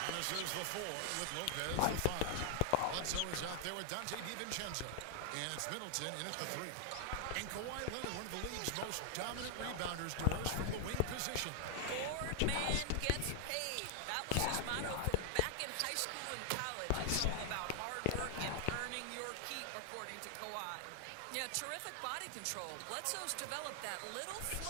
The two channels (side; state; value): both; different; correlation 0.00